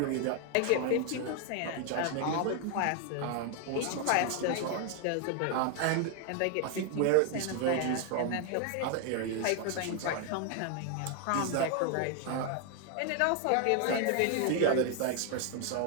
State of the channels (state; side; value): different; both; correlation 0.01